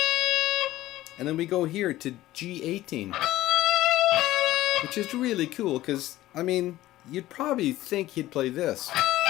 And then we go here to G18. Which is really cool because, I mean, you'd probably think he'd play this.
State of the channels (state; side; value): quieter; right; 15.7 dB